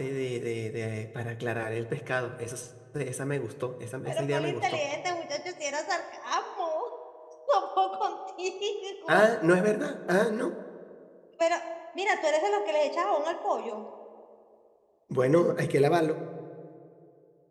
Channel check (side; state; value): both; identical; correlation 1.00